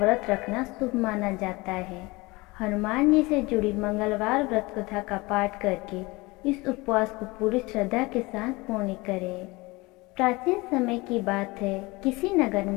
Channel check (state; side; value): quieter; right; 23.3 dB